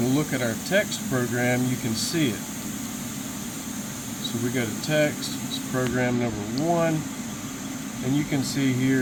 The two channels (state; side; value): identical; both; correlation 1.00